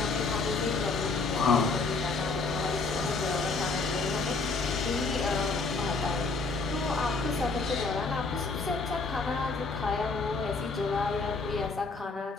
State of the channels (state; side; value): quieter; right; 4.0 dB